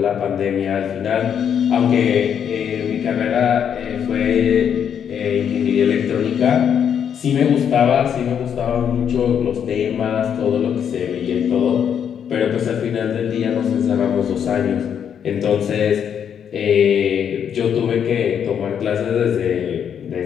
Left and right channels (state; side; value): quieter; right; 8.3 dB